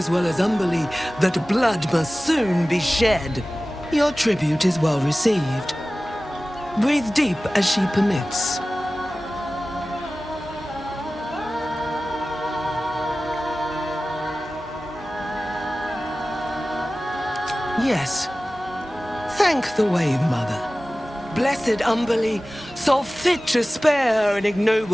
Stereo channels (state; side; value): normal; both; correlation 0.97